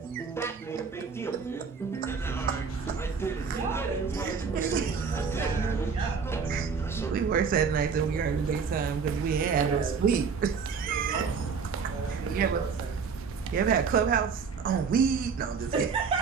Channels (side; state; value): left; quieter; 5.7 dB